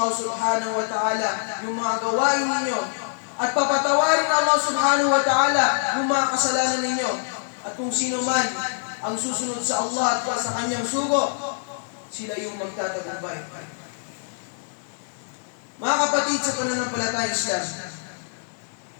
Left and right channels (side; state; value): right; silent; digital silence